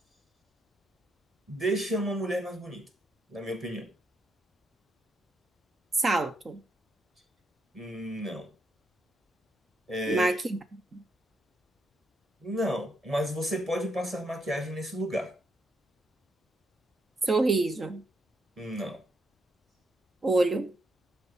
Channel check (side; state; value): both; normal; correlation 0.79